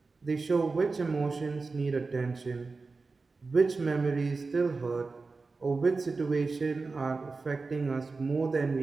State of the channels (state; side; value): quieter; left; 4.0 dB